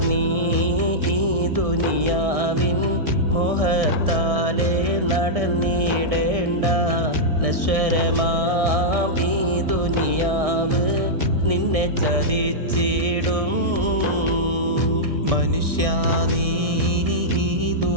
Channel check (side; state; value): left; late; 1.6 ms